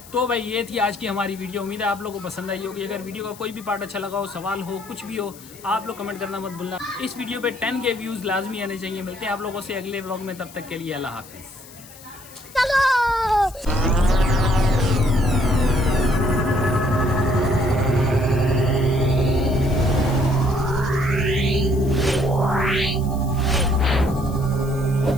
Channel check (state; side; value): noise; left; hiss, 20 dB below the sound